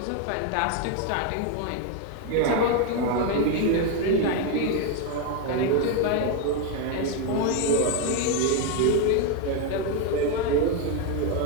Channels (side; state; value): both; different; correlation 0.01